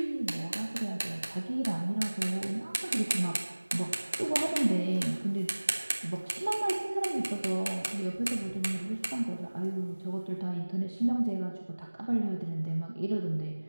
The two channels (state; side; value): inverted; both; correlation -1.00